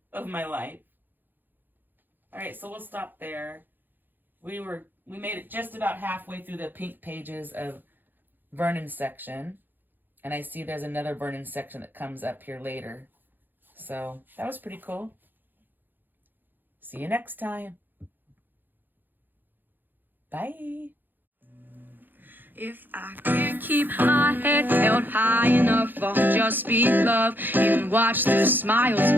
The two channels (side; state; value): left; late; 0.090 ms